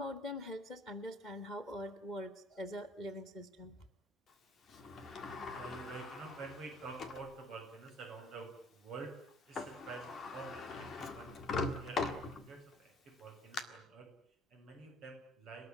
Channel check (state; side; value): normal; both; correlation 0.55